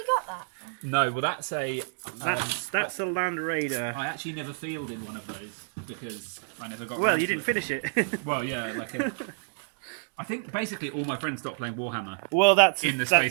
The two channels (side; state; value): left; silent; digital silence